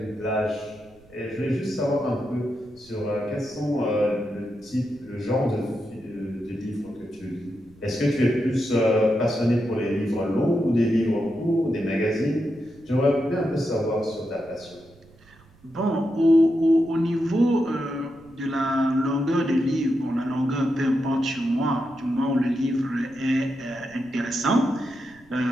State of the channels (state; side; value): noise; right; rumble, 27 dB below the sound